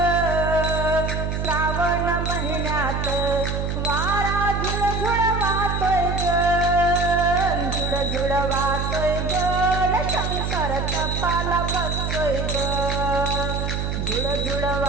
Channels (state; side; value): noise; right; hum, 1 dB below the sound